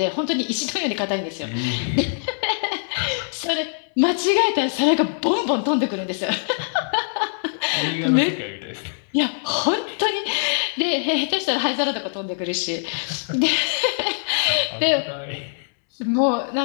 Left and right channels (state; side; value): silent; right; 64 dB below the other